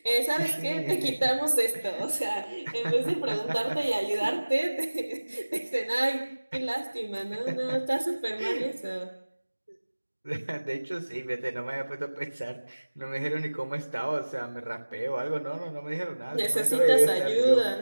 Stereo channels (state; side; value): inverted; both; correlation -1.00